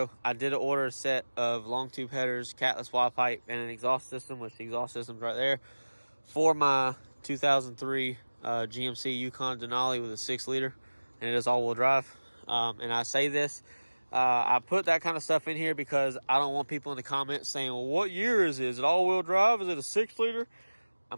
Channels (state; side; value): inverted; both; correlation -1.00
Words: I did order a set of long tube headers, catless wide pipe, and an exhaust system, which the exhaust system's right there, for my 2003 GMC Yukon Denali with a 6-liter, and it is all-wheel drive. And I say this, I put that kind of stuff in here because I don't want people in the comments saying, well, what year is it? Is it all-wheel drive? Is it a 6-liter?